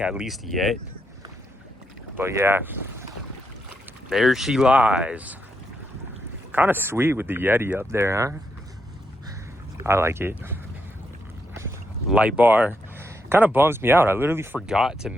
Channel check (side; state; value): both; normal; correlation 0.80